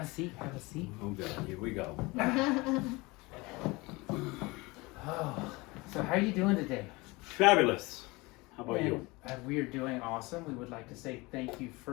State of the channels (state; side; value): quieter; right; 23.8 dB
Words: a seat. Have a seat. Oh, God. Here we go. Oh, so how are you doing today? Fabulous. How about you? We are doing awesome. We would like to say thank you